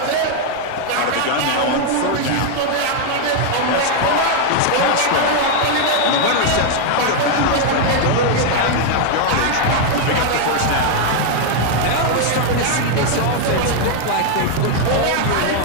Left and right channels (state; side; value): different; both; correlation 0.00